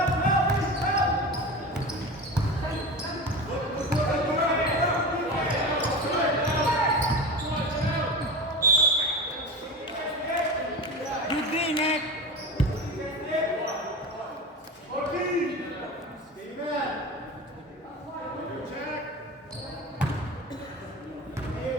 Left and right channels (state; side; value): normal; both; correlation 0.28